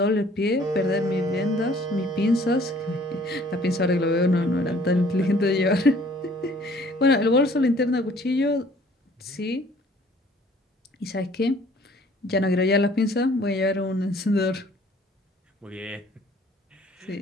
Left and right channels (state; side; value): normal; both; correlation 0.56